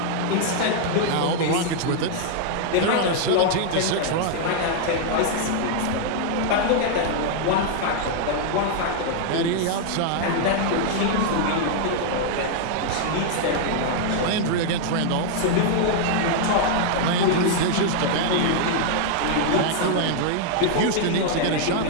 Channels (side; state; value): both; different; correlation -0.01